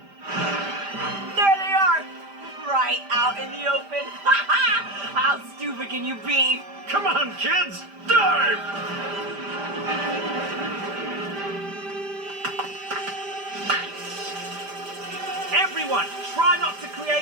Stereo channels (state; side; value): late; left; 5.0 ms